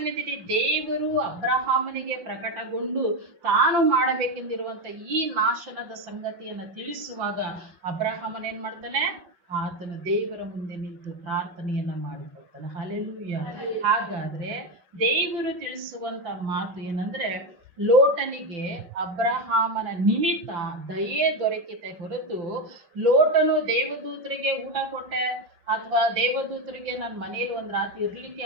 ದೇವರು ಅಬ್ರಹಾಮನಿಗೆ ಪ್ರಕಟಗೊಂಡು ತಾನು ಮಾಡಬೇಕೆಂದಿರುವಂತ ಈ ನಾಶನದ ಸಂಗತಿಯನ್ನ ತಿಳಿಸುವಾಗ ಅಬ್ರಹಾಮನ್ ಏನ್ ಮಾಡ್ತಾನೆ, ಆತನು ದೇವರ ಮುಂದೆ ನಿಂತು ಪ್ರಾರ್ಥನೆಯನ್ನ ಮಾಡಿಕೊಳ್ತಾನೆ. ಹಲ್ಲೆಲೂಯ. ಹಾಗಾದ್ರೆ ದೇವರು ತಿಳಿಸುವಂತ ಮಾತು ಏನಂದ್ರೆ, ಲೋಟನಿಗೆ ಅಬ್ರಹಾಮನ ನಿಮಿತ್ತ ದಯೆ ದೊರಕಿತೆ ಹೊರತು ಲೋಟನು ದೇವದೂತರಿಗೆ ಊಟ ಕೊಟ್ಟೆ ಅಥವಾ ದೇವದೂತರಿಗೆ ನನ್ನ ಮನೆಯಲ್ಲಿ ಒಂದು ರಾತ್ರಿ ಇರ್ಲಿಕ್ಕೆ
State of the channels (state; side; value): late; left; 5.5 ms